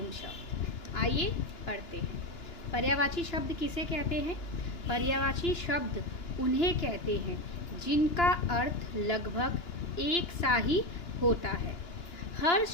शब्द। आइए पढ़ते हैं। पर्यायवाची शब्द किसे कहते हैं? पर्यायवाची शब्द उन्हें कहते हैं जिनका अर्थ लगभग एक सा ही होता है। हर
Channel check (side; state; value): right; late; 2.9 ms